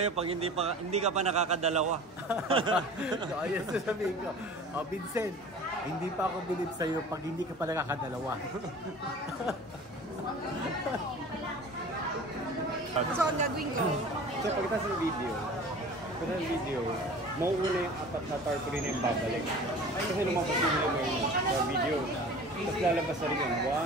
pag hindi ka pa nakakadalawa? So ayun sasabihin ko. Vincent, hindi pa ako believe sa'yo pag hindi ka pa nakakadalawa. So, ang gagawin ko, So pagkatapos ng video, mauuna yung apat na tarpaulin na yung babalik. Kasi lumabas yung sa video. Tapos lalabas na rin yun.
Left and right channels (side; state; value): both; normal; correlation 0.41